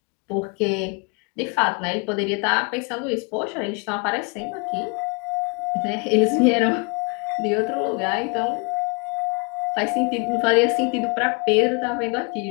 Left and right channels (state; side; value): quieter; right; 32.9 dB